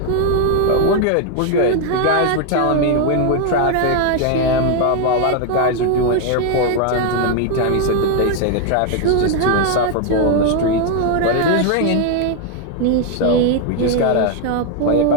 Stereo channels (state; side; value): different; both; correlation 0.01